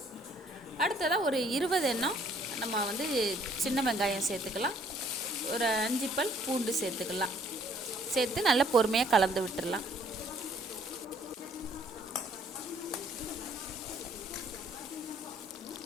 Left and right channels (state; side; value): normal; both; correlation 0.61